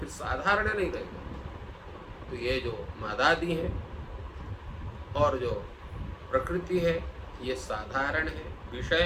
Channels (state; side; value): identical; both; correlation 1.00